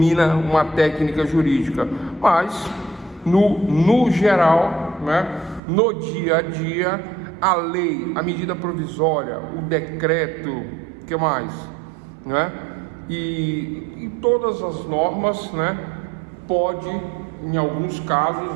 uma técnica jurídica, mas no geral, né? No dia a dia, a lei, a medida provisória, o decreto, que mais, né? E todas as normas, né? Pode, em alguns casos,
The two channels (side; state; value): left; drops out; at 5.6 s